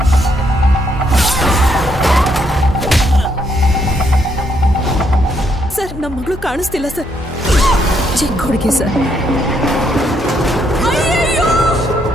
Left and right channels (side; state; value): both; normal; correlation 0.74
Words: ಸರ್, ನಮ್ಮ ಮಗಳು ಕಾಣಿಸ್ತಿಲ್ಲ ಸರ್. ಚಿಕ್ಕ ಹುಡುಗಿ ಸರ್.